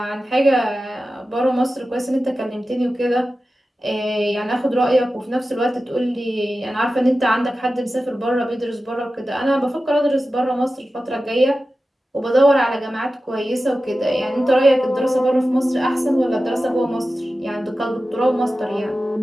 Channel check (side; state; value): both; normal; correlation 0.94